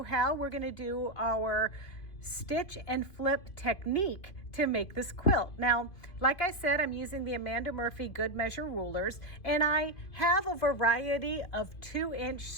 how we're going to do our stitch and flip technique to make this quilt. Now, like I said, I'm using the Amanda Murphy Good Measure rulers, and I have a variety of 2-inch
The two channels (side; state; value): right; late; 2.5 ms